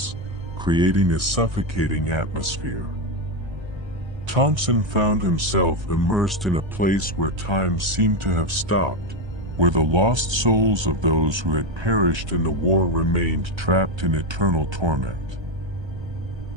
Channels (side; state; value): left; late; 1.3 ms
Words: creating a suffocating atmosphere. Thompson found himself immersed in a place where time seemed to have stopped, where the lost souls of those who had perished in the war remained trapped in eternal torment.